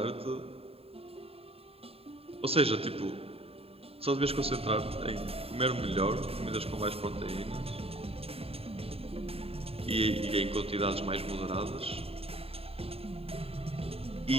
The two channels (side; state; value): left; late; 0.28 ms